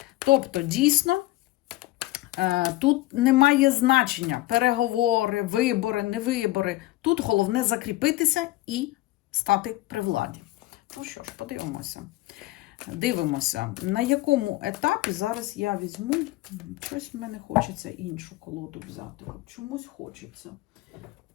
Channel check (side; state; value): right; quieter; 17.7 dB